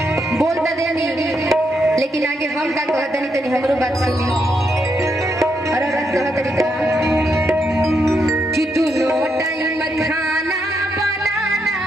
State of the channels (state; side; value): normal; both; correlation 0.79